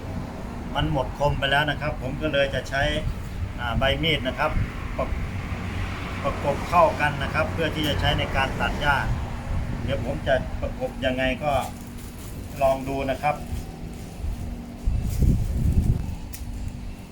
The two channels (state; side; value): identical; both; correlation 1.00